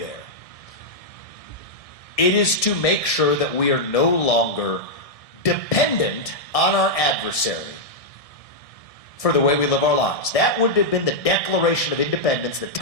it is to make sure that we are no longer dependent on our adversary for the way we live our lives. That would have been the Declaration of Independence that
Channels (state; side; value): late; right; 1.6 ms